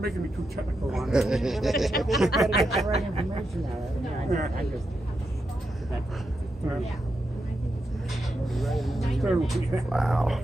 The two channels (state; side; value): normal; both; correlation 0.86